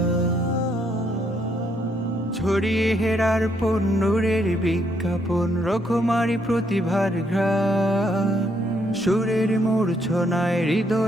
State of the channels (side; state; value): both; normal; correlation 0.73